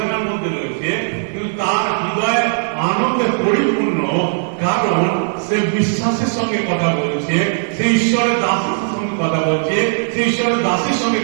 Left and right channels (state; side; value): silent; left; 55 dB below the other